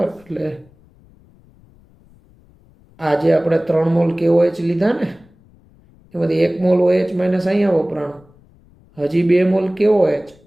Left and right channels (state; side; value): noise; left; rumble, 29 dB below the sound